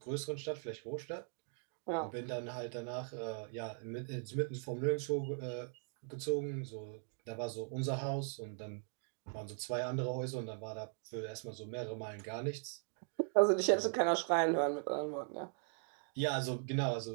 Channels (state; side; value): silent; left; 51 dB below the other